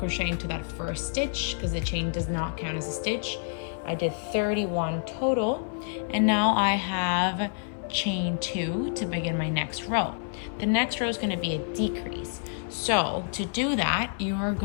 into that first stitch because the chain does not count as a stitch. I did 31 total, and now I have chain 2 to begin my next row. The next row is going to be a decrease. So to do that, you're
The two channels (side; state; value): right; silent; 59 dB below the other